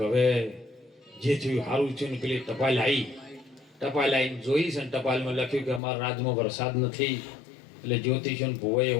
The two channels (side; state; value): right; drops out; at 5.8 s